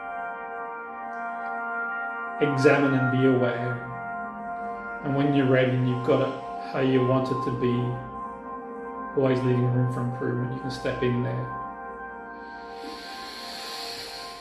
examine and be aware. And when you're ready and you've got it how you want it to be, always leaving room for improvement, you can step in there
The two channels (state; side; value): identical; both; correlation 1.00